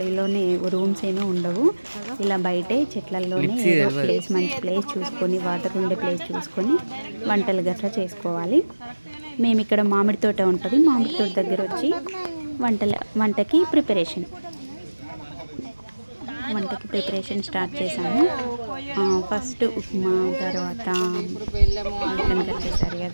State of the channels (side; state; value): both; inverted; correlation -1.00